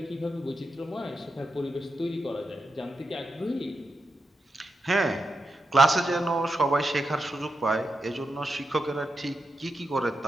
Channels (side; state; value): both; normal; correlation 0.87